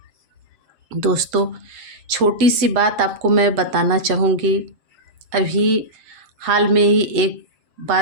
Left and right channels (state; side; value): late; left; 7.5 ms